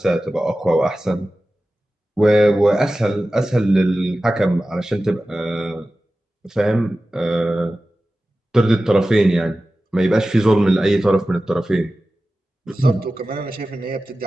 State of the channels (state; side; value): normal; both; correlation 0.95